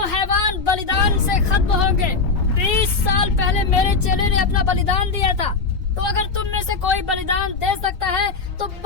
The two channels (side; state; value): right; quieter; 4.4 dB